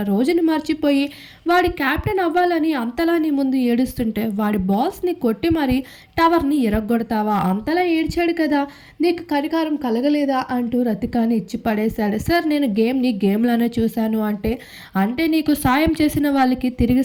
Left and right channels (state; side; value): identical; both; correlation 1.00